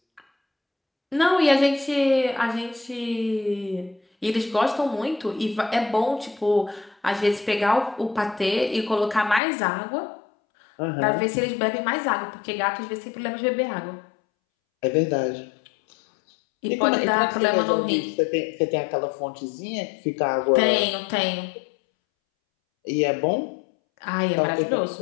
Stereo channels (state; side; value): drops out; right; at 9.4 s